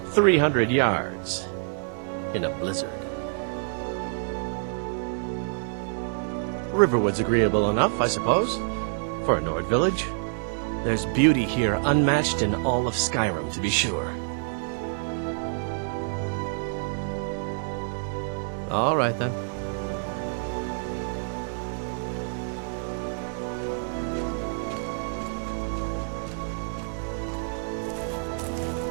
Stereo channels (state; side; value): silent; left; 60 dB below the other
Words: 300 yards in a blizzard. Riverwood's agreeable enough, I suppose, for a Nord village. There's beauty here unmatched in all of Skyrim, to be sure. All right, then.